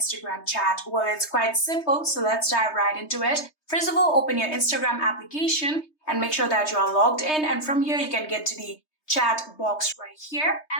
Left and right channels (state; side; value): late; right; 3.2 ms